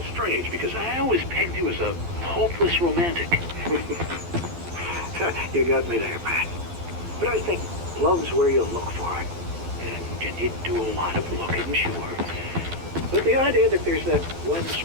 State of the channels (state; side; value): late; left; 12 ms